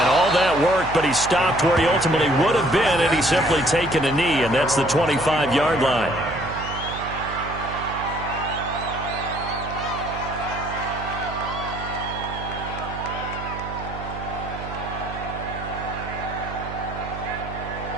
all that work, but he stopped where he ultimately would have been had he simply taken a knee, and that's the 25-yard line.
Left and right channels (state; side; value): noise; right; hum, 10 dB below the sound